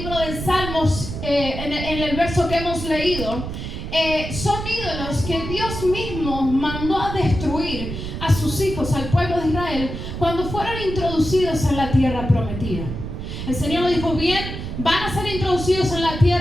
de Salmos en el verso que hemos leído, son ídolos que Dios mismo mandó a destruir a sus hijos, al pueblo de Israel, cuando fueron introducidos en la tierra prometida. El Señor dijo: bien, van a ser introducidos en la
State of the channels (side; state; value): right; noise; rumble, 6 dB below the sound